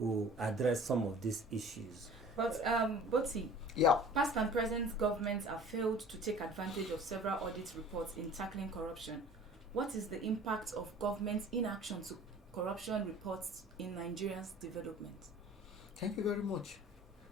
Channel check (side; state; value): both; normal; correlation 0.46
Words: address some of these issues. But Boti, yeah, past and present governments have failed to take advantage of several audit reports in tackling corruption. What is the impact of government's inaction to corruption reports in Nigeria's development? Thank you very much.